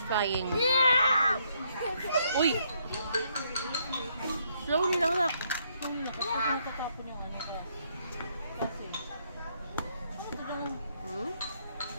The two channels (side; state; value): both; inverted; correlation -0.72